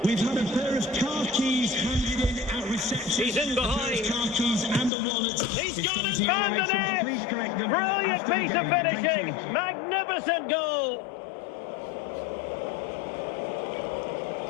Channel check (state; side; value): drops out; right; at 4.9 s